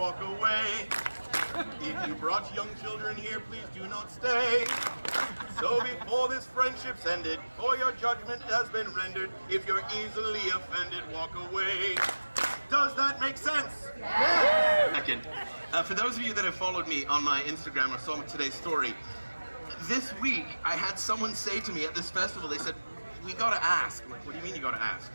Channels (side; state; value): both; inverted; correlation -1.00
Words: away. If you brought young children here, please do not stay. So before this friendship's ended, or your judgment has been rendered, if you're easily offended, walk away. Does that make sense? Yeah. Second, for those of you that have followed me on my Instagram or saw today's story, this week I had someone say to me at this festival, they said, we gotta ask. I'm like, what do you mean you gotta ask?